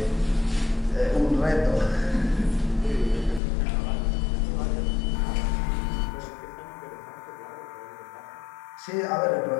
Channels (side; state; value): right; drops out; at 3.4 s